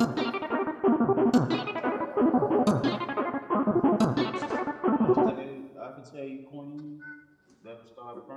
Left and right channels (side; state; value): both; identical; correlation 1.00